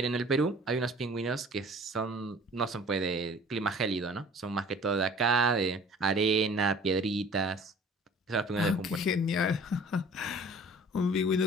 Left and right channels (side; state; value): both; normal; correlation 0.49